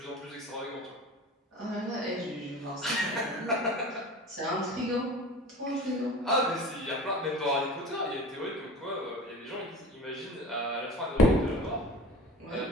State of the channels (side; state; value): both; normal; correlation 0.37